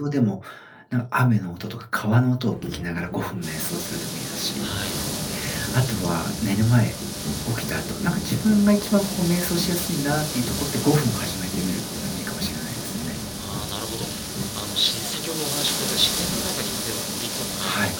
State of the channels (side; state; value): both; identical; correlation 1.00